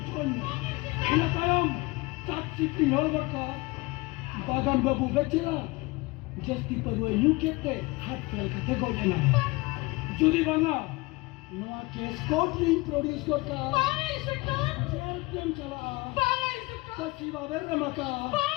juan ina tayam tatsikti nolbaka bagan babu bechera jasti parwe yukete hat fel kate gojena jodi banga noa case court introduce korta Bangla inspector jam chala Bangla inspector tasiba bermaka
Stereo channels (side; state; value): right; quieter; 23.3 dB